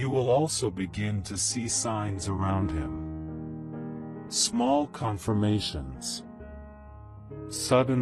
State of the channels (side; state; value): both; identical; correlation 1.00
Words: will also begin to see signs around him. Small confirmations.